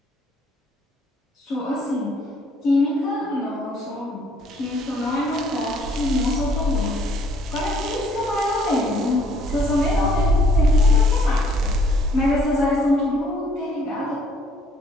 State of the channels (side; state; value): both; normal; correlation 0.63